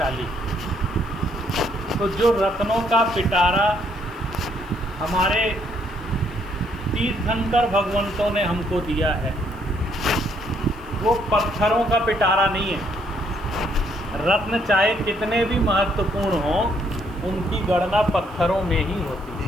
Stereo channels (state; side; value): noise; left; hiss, 29 dB below the sound